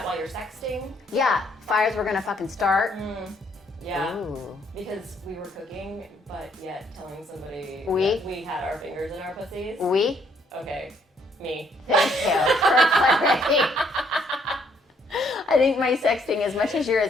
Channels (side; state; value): both; normal; correlation 0.68